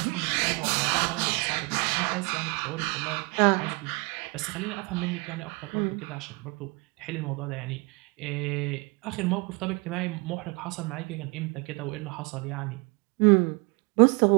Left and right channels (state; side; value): quieter; left; 28.6 dB